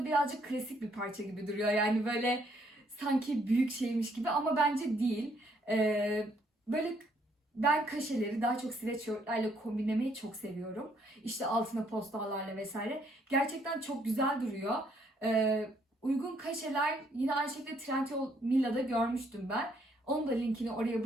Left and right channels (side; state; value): both; normal; correlation 0.69